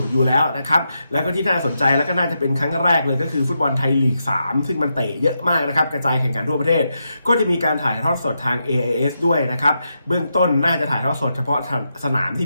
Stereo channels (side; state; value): both; inverted; correlation -0.84